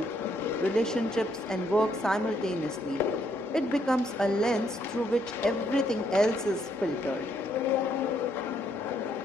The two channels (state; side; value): normal; both; correlation 0.72